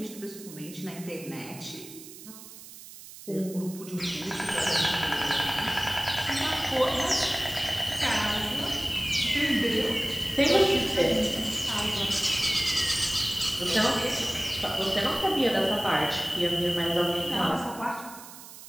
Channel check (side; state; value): right; noise; hiss, 16 dB below the sound